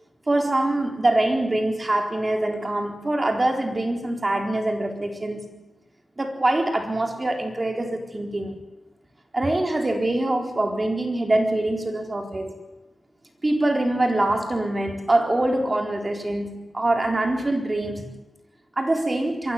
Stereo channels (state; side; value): normal; both; correlation 0.97